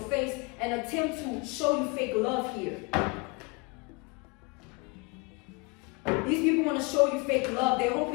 face and attempt to show you fake love here. These people want to show you fake love. They're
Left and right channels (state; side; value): quieter; right; 28.8 dB